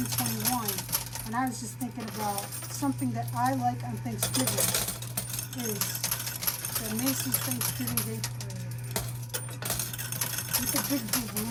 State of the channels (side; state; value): both; identical; correlation 1.00